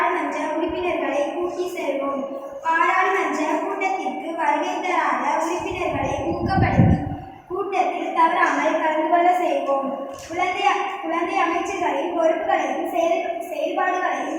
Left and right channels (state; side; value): identical; both; correlation 1.00